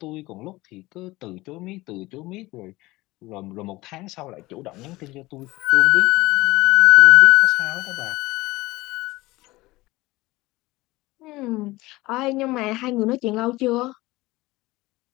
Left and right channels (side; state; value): right; quieter; 20.0 dB